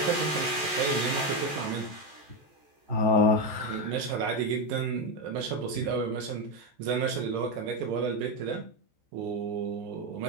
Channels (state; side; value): late; left; 14 ms